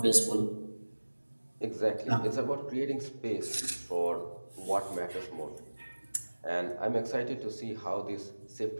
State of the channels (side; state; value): both; inverted; correlation -1.00